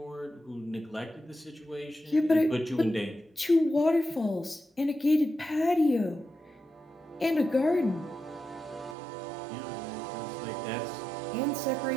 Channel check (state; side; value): drops out; left; at 9.0 s